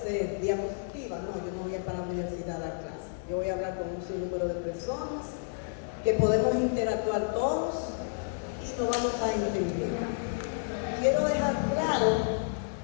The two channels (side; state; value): right; silent; digital silence